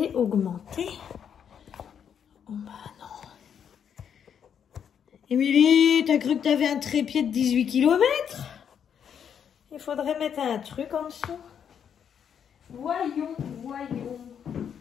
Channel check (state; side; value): quieter; right; 8.1 dB